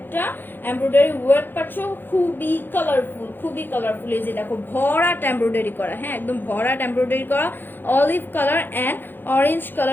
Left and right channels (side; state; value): right; late; 0.096 ms